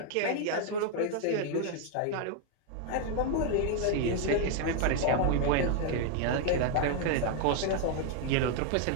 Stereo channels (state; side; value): different; both; correlation 0.00